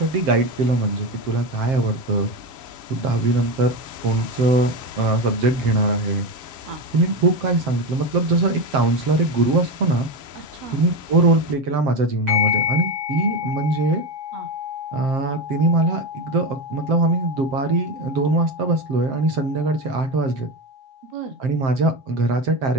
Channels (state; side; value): late; left; 7.6 ms